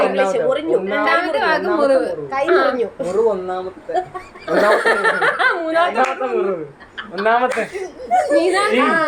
ഇംഗ്ലീഷ് മുറിഞ്ഞു രണ്ടാമത്തെ വാക്ക് മുറിവ്. കൈ മുറിഞ്ഞു മുറിവ് ഒന്നാമത്തെ ഒന്നാമത്തെ മുറിവ് ഒന്നാമത്തെ നീതാണ്.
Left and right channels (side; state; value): both; identical; correlation 1.00